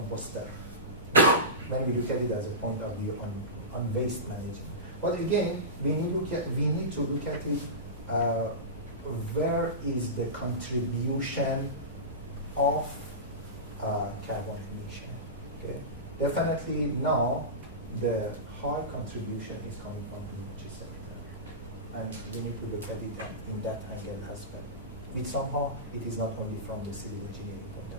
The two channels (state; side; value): normal; both; correlation -0.20